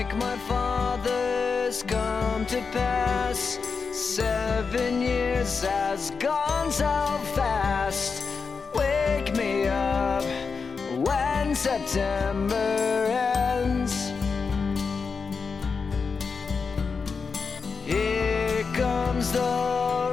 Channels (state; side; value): quieter; right; 5.1 dB